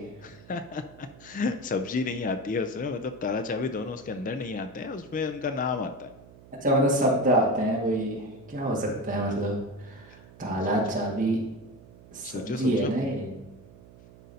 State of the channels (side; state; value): right; noise; hum, 21 dB below the sound